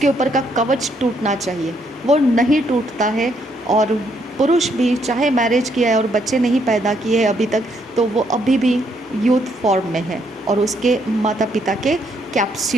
ऊपर का कवच टूटना चाहिए, वो नहीं टूटता है। और पुरुष भी चाहे मैरिज किया है और बच्चे नहीं पैदा किए हैं अभी तक, तो वो अभी भी यूथ फॉर्म में है और उसके माता पिता के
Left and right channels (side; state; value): both; normal; correlation 0.72